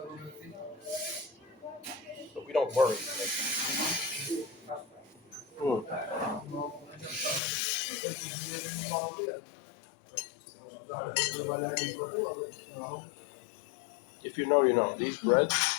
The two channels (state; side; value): drops out; right; at 7.4 s